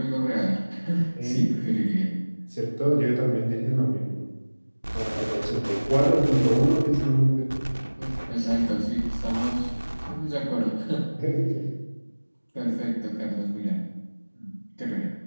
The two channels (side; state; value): both; inverted; correlation -1.00